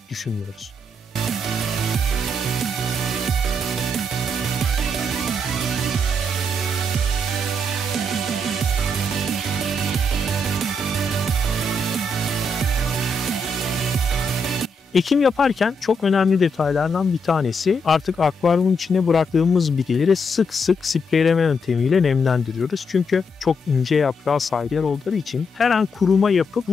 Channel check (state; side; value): normal; both; correlation 0.79